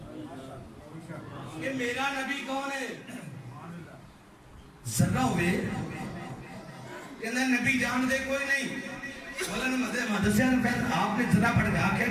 کہ میرا نبی کون ہے ذرہ ہوئے کہ نبی جان دے کوئی نہیں مولانا محمد سیاض آپ نے ذرا پڑھ کے آخیا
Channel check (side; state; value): both; identical; correlation 1.00